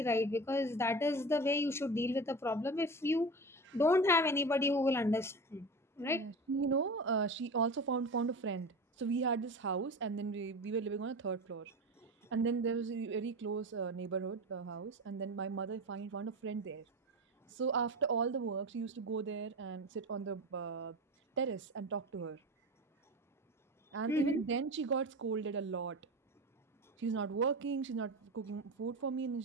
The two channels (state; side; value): normal; both; correlation 0.28